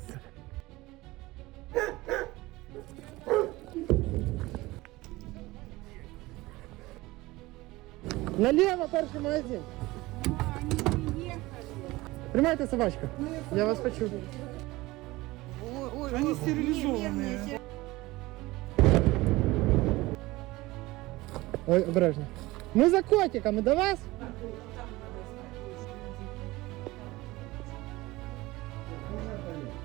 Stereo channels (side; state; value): left; quieter; 19.9 dB